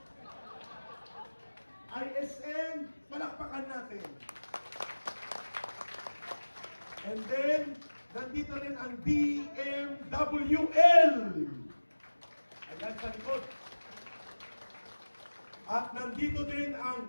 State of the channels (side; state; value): both; inverted; correlation -1.00